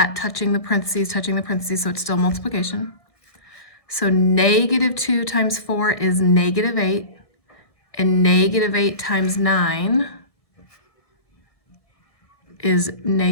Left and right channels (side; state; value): right; late; 1.7 ms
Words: touching the parentheses, so it's still multiplication. So negative 2 times 4 is negative 8, and negative 8 times 9 is